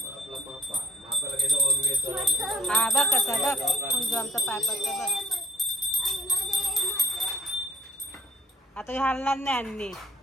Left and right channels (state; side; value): normal; both; correlation 0.61